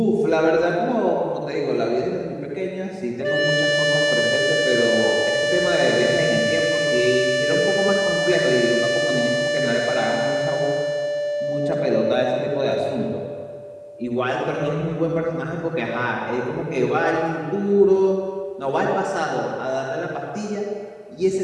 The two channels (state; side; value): identical; both; correlation 1.00